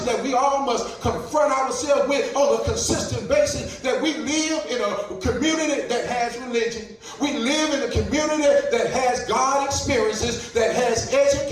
that we all must confront ourselves with on a consistent basis? That we live in a community that has religion. We live in a community that has God experiences, that has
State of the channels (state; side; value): identical; both; correlation 1.00